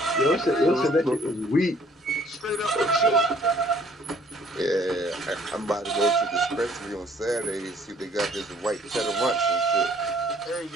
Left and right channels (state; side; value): normal; both; correlation 0.59